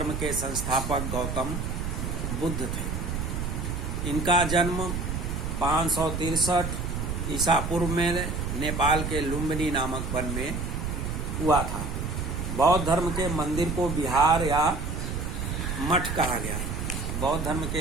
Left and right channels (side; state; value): right; noise; rumble, 3 dB below the sound